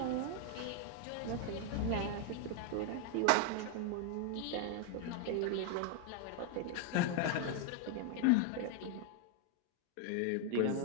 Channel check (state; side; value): different; both; correlation 0.00